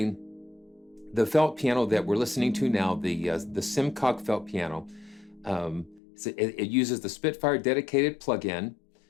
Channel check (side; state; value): right; drops out; at 6.0 s